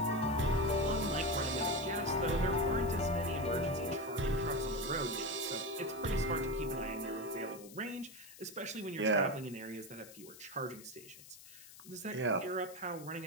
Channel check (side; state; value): left; noise; hiss, 18 dB below the sound